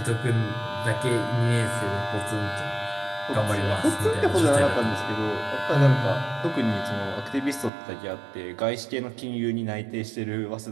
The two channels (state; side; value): drops out; left; at 7.7 s